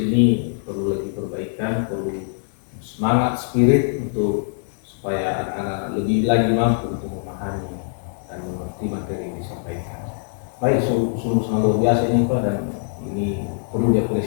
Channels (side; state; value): right; silent; digital silence